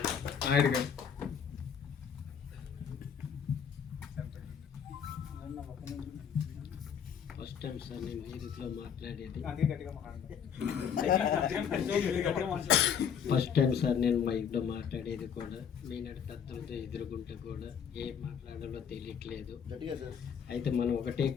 First time sir నేను మ్యూజిక్లో మాట్లాడేది. ఫస్ట్ టైం సార్ నేను మైక్లో మాట్లాడేది కూడా. మీనాడు పెద్దలతో ఎదుర్కొంటే కూడా ఏం మాట్లాడాలో తెలియట్లేదు. అయితే మనం ఒకటే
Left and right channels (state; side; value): quieter; right; 7.6 dB